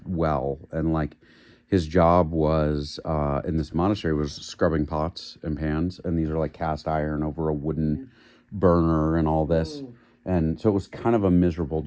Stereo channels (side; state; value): both; identical; correlation 1.00